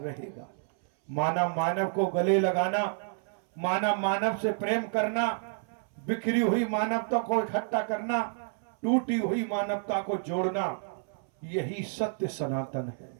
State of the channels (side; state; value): left; silent; 58 dB below the other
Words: मानव मानव को गले लगाना, मानव मानव से प्रेम करना, बिखरी हुई मानवता को इकट्ठा करना, टूटी हुई मानवता को जोड़ना, यही सत्य सनातन है,